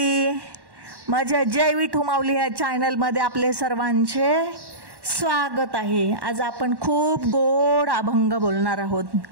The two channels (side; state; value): left; late; 1.1 ms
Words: माझ्या जय विठू माऊली या चॅनलमध्ये आपले सर्वांचे स्वागत आहे. आज आपण खूप गोड अभंग बोलणार आहोत